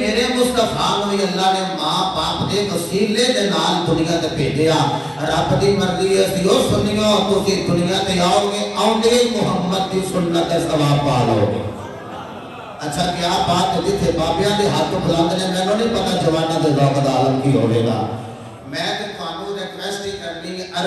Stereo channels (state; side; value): identical; both; correlation 1.00